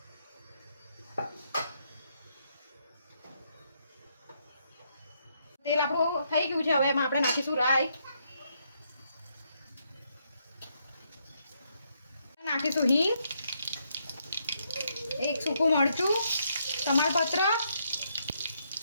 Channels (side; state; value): both; inverted; correlation -0.76